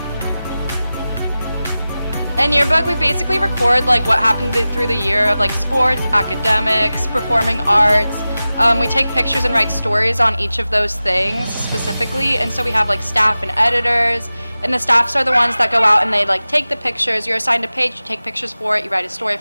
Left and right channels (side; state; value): both; inverted; correlation -0.96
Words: In Yearbook, we basically record what happened through the year of sports, academics, performing arts. We take pictures and write stories on each of those things specifically, and so we have staff and editors, and the staffs are the ones that go out and they take the pictures. You're assigned a page, you take pictures for it, you write a story